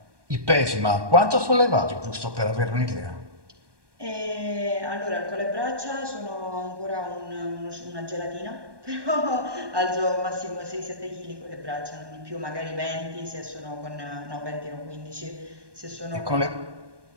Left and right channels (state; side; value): late; left; 1.2 ms